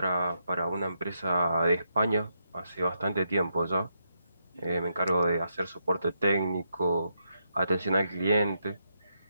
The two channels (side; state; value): both; inverted; correlation -0.82